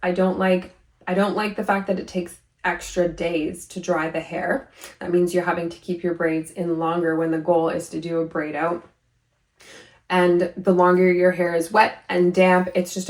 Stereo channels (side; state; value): both; identical; correlation 1.00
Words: I don't like the fact that it takes extra days to dry the hair. That means you're having to keep your braids in longer when the goal is to do a braid out. And the longer your hair is wet and damp, it's just